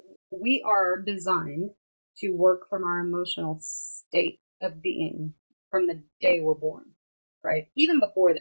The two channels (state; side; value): inverted; both; correlation -1.00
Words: we are designed to work from our emotional state of being from the day we're born, right? Even before